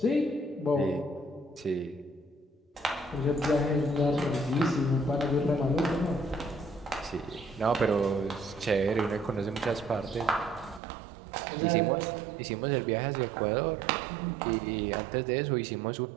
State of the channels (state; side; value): drops out; left; at 10.8 s